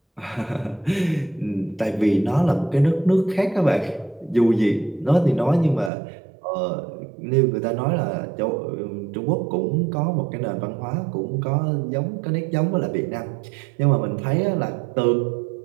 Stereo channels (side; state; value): left; drops out; at 5.9 s